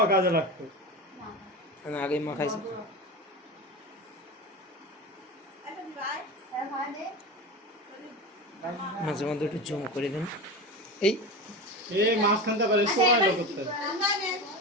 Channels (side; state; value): both; normal; correlation 0.25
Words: কাজে লাগতো আমি আগে মাখাইছি মাঝে মধ্যে একটু জুম করে দেন এই মাঝখানটা পারে সময় করতে